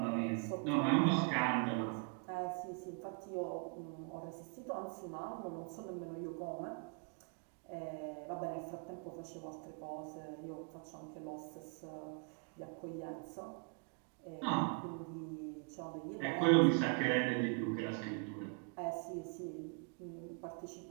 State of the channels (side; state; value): left; quieter; 39.9 dB